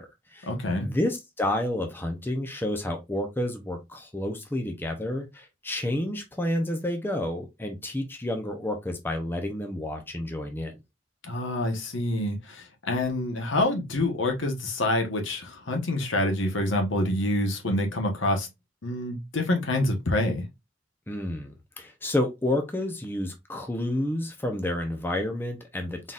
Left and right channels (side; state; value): both; normal; correlation 0.53